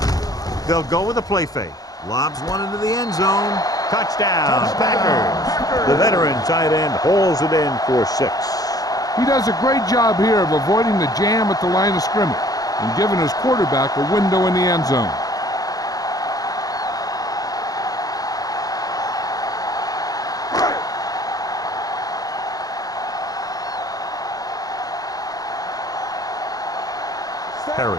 They'll go with a play fake. Lobs one into the end zone. Touchdown, Packers. The veteran tight end hauls it in for 6. He does a great job here of avoiding the jam at the line of scrimmage and giving his quarterback a window in the end zone. Perry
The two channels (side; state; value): right; late; 0.18 ms